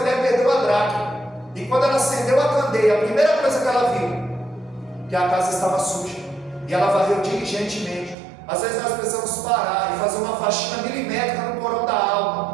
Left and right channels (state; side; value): drops out; left; at 8.2 s